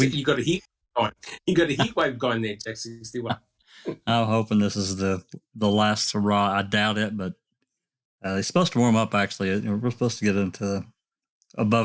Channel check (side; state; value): both; identical; correlation 1.00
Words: got a heat going. You got a heat wave going there, Jack61. I'm hoping this is the last hurrah. I doubt it, but it's supposed to warm up, actually. We're supposed to get into